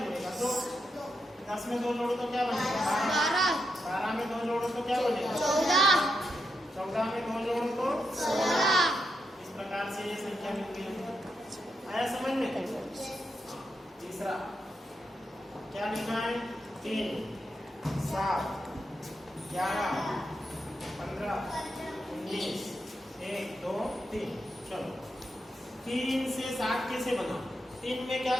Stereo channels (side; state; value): both; normal; correlation 0.84